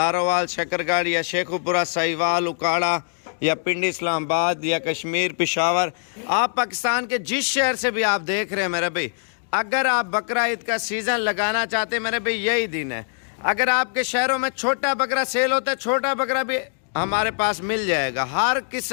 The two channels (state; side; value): silent; right; digital silence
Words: शकरगढ़ या शेखुपुरा, साहिवाल, उकाड़ा या पिंडी, इस्लामाबाद या कश्मीर, पेशावर, आप पाकिस्तान के जिस शहर से भी आप देख रहे हैं मेरे भाई, अगर आप बकरा ईद का सीज़न लगाना चाहते हैं मेरे भाई, यही दिन है। अगर आपके शहरों में छोटा बकरा सेल होता है, छोटा बकरा भी हमारे पास मिल जाएगा, हर